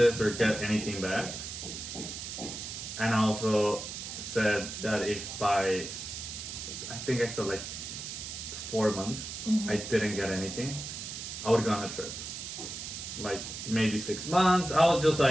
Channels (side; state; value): right; noise; hiss, 7 dB below the sound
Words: or get anything back. And I also said that if by, I think I said like 4 months, I didn't get anything, I would go on a trip. Like maybe 6 months, I was just